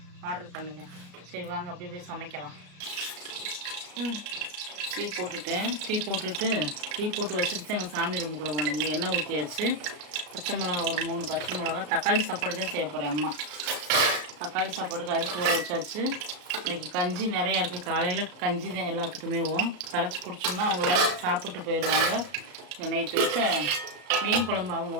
ஆர்டர் பண்ணுங்க. சரி வாங்க அப்படியே போய் சமைக்கலாம். டீ போட்டுட்டேன். டீ போட்டு வச்சுட்டு எங்கள் சாமி ரூமுக்குள்ளே போனேன். இங்கே எண்ணெய் ஊற்றியாச்சு. பச்சை மிளகா ஒரு 3 பச்சை மிளகா. தக்காளி சாப்பாடு தான் செய்ய போகிறேன். அம்மா தக்காளி சாப்பாடுக்கு அரிசி ஊற வச்சாச்சு. இன்றைக்கி கஞ்சி நிறையா இருக்குது. காலையில் கஞ்சி தான் எல்லாத்துக்குமே கரைச்சி குடிச்சோம்னா அவங்க வேலை சாப்பிட்டு போயிடுவாங்க. நைட்டு வச்ச மீன் குழம்பு அவங்க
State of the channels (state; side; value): late; left; 34 ms